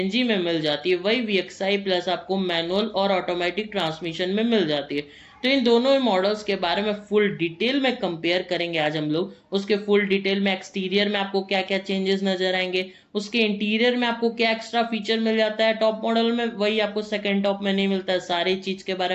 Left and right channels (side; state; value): both; identical; correlation 1.00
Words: में मिल जाती है, वही VXI प्लस आपको मैनुअल और ऑटोमेटिक ट्रांसमिशन में मिल जाती है। तो इन दोनों मॉडल्स के बारे में फुल डिटेल में कंपेयर करेंगे आज हम लोग। उसके फुल डिटेल में एक्सटीरियर में आपको क्या क्या चेंजेस नजर आएंगे, उसके इंटीरियर में आपको क्या एक्स्ट्रा फीचर मिल जाता है टॉप मॉडल में, वही आपको सेकेंड टॉप में नहीं मिलता है, सारी चीज के